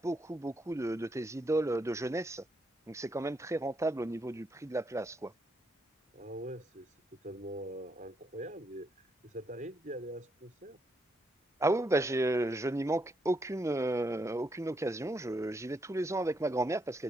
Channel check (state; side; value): normal; both; correlation 0.77